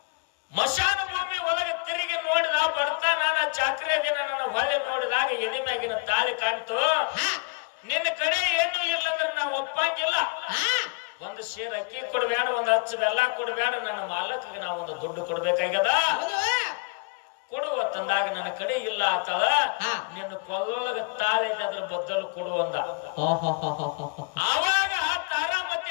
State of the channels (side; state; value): right; quieter; 31.0 dB